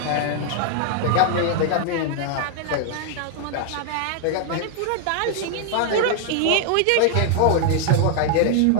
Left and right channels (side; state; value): both; different; correlation 0.00